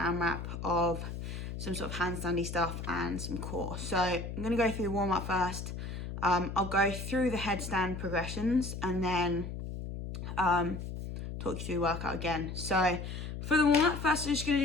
of some sort of handstandy stuff and some core. So I'm going to go through the warm-up first. I'll go through the headstand progressions and then talk you through the workout again. So for the warm-up, first we're just going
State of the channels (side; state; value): left; noise; hum, 7 dB below the sound